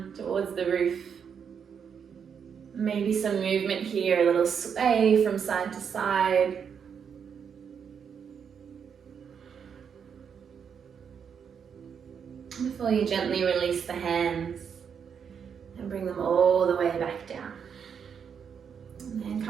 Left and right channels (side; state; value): left; quieter; 7.1 dB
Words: towards the roof. Maybe some movement here, a little sway from side to side. Before you gently release the hands and bring them all the way back down. And then